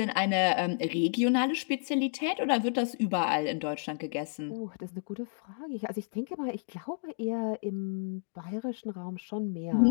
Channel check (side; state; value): right; silent; digital silence